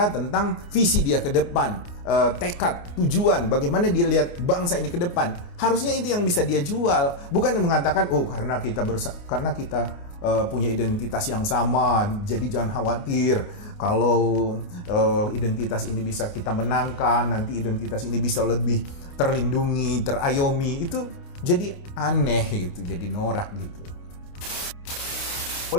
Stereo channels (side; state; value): right; late; 29 ms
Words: tentang visi dia ke depan, tekad, tujuan, bagaimana dia lihat bangsa ini ke depan? Harusnya itu yang bisa dia jual, bukan mengatakan karena kita punya identitas yang sama, jadi jangan khawatir kalau identitas ini bisa kita menangkan, nanti identitas ini bisa lebih terlindungi, terayomi. Itu jadi aneh gitu, jadi norak gitu.